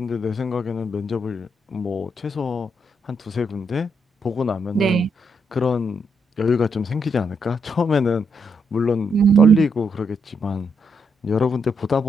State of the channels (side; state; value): both; normal; correlation 0.78